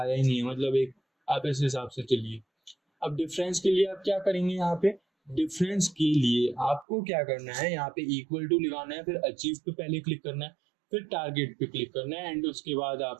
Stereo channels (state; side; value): drops out; left; at 6.9 s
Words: ही नहीं है, मतलब एक आप इस हिसाब से चलिए। अब डिफरेंस के लिए आप क्या करेंगे, यहाँ पे डिफरेंस के लिए आपको क्या करना है, यहाँ पे इक्वल टू लगाना है, फिर अचीव पे पहले क्लिक करना है, फिर टारगेट पे क्लिक करना है एंड उसके बाद